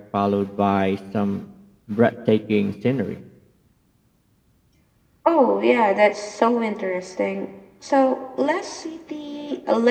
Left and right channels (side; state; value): both; identical; correlation 1.00